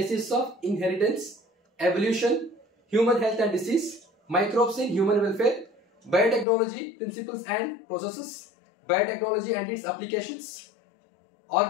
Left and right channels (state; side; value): drops out; right; at 6.5 s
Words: of inheritance, evolution, human health and disease, microbes in human welfare, biotechnology, principles and processes, biotechnology and its applications,